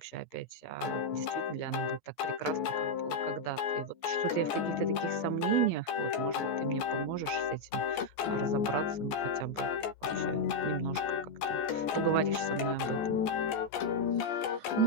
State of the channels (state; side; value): late; right; 14 ms